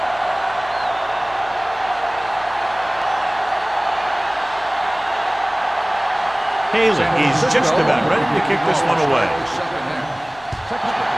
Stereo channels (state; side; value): noise; left; hum, 25 dB below the sound